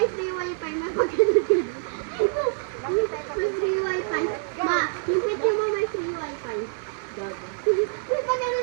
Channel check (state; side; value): silent; left; 61 dB below the other